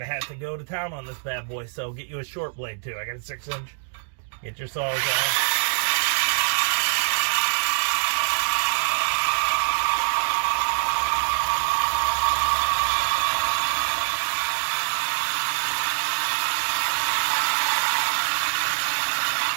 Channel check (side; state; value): left; silent; digital silence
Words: have to go to town on this bad boy. So get you a short blade too. I got a 6-inch. Get your saws out.